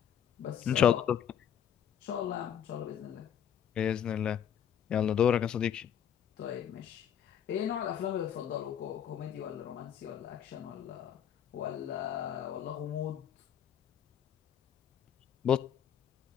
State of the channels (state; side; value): quieter; right; 9.1 dB